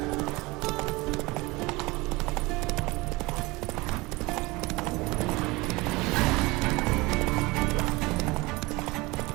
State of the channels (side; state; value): left; quieter; 23.1 dB